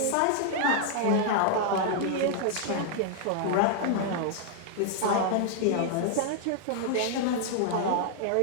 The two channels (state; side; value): different; both; correlation 0.00